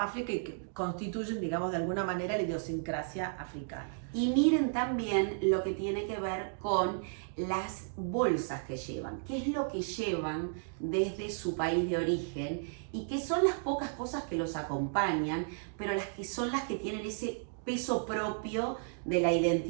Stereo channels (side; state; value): left; silent; digital silence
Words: África y que constituyen, digamos, de alguna manera la idiosincrasia africana. Y miren también lo que tiene que ver con las bolsas que llevan, qué es lo que llevan desde su país de origen y que son las pocas cosas que los acompañan, pero las que son las que tienen ese peso propio de la